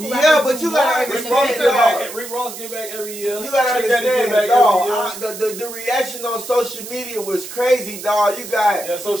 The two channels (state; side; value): noise; right; hiss, 11 dB below the sound